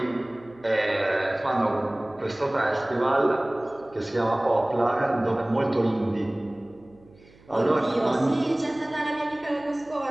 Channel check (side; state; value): right; noise; hum, 27 dB below the sound